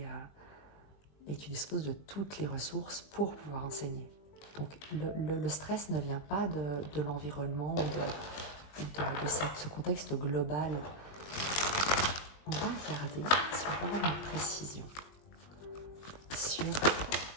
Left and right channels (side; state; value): right; late; 20 ms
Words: tu disposes de toutes les ressources pour pouvoir enseigner. Donc le stress ne vient pas de l'environnement ou de ce contexte global. On va regarder si on peut avoir une précision sur